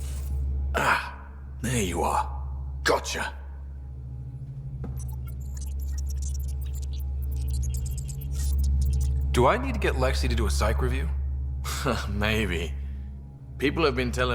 There you are. Gotcha. Do I need to get Lexi to do a psych review? Maybe. People have been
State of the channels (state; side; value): identical; both; correlation 1.00